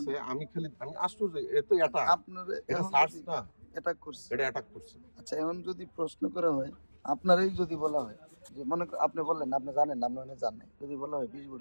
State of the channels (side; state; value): both; inverted; correlation -1.00